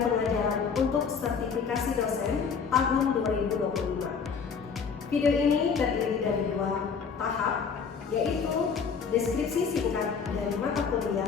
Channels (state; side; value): quieter; right; 6.0 dB